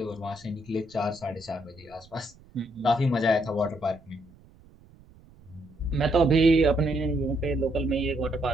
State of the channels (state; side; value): noise; right; rumble, 26 dB below the sound